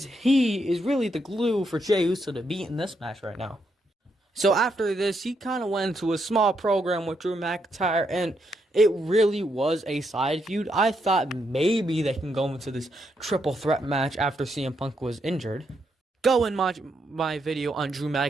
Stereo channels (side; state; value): both; normal; correlation 0.79